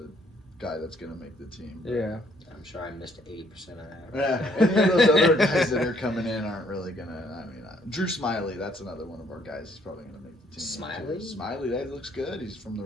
guy that's going to make the team. Yeah. I'm sure I missed 80% of that. Yeah, any of those other guys that are coming in aren't really going to, Drew Smiley, that's another one of our guys who's probably going to make the team. Smiley? Smiley, that looks good. He's from the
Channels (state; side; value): normal; both; correlation 0.66